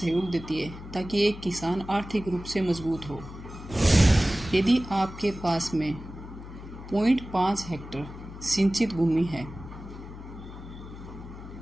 देती है ताकि एक किसान आर्थिक रूप से मजबूत हो। यदि आपके पास में 0.5 हेक्टेयर सिंचित भूमि है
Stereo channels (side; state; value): left; noise; hum, 13 dB below the sound